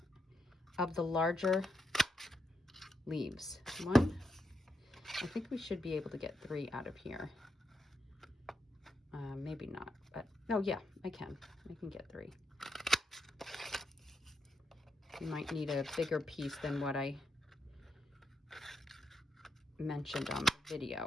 of the larger leaves. I think we should be able to get 3 out of here. Maybe not, but oh yeah, I can get 3. You might need a bigger piece than what I mentioned on the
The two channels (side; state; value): both; normal; correlation 0.82